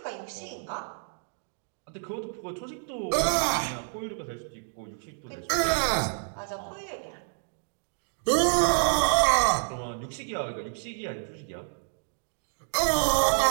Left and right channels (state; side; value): silent; left; digital silence